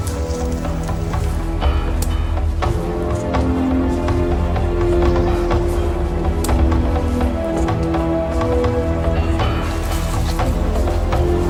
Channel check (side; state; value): both; identical; correlation 1.00